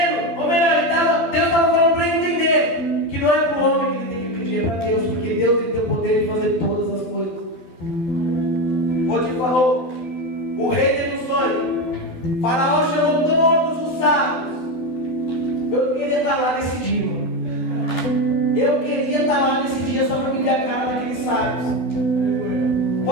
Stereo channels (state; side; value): late; right; 12 ms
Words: ou melhor, Deus estava falando para ele entender que não é para o homem que ele tem que pedir, é para Deus, porque Deus ele tem o poder de fazer todas as coisas. Potifar falou, o rei Faraó chamou todos os sábios. Eu queria estar lá nesse dia. Eu queria estar lá nesse dia só para me ver a cara daqueles sábios.